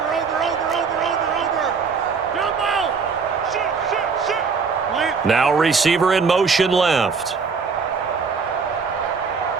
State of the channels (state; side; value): quieter; left; 5.3 dB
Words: Now receiver in motion left.